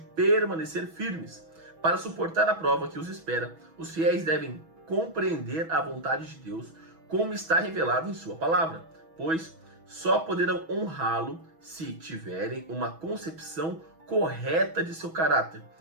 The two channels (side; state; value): left; late; 6.2 ms